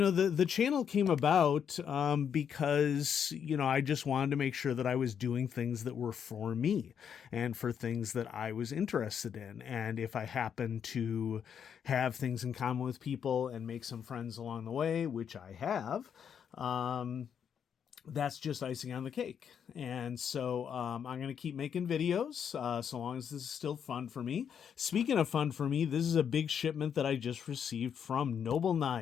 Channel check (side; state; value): right; quieter; 7.9 dB